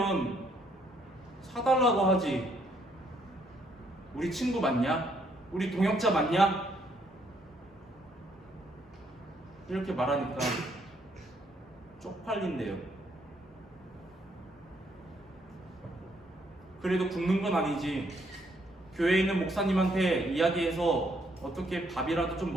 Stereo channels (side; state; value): both; normal; correlation 0.70